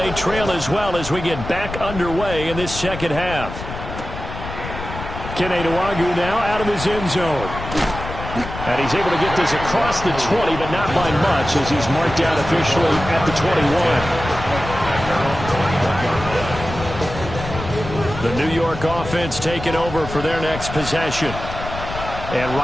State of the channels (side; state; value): left; noise; rumble, 9 dB below the sound